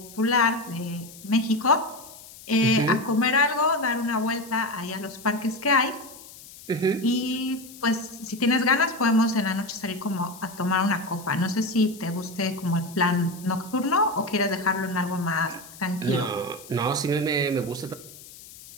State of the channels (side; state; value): left; noise; hiss, 18 dB below the sound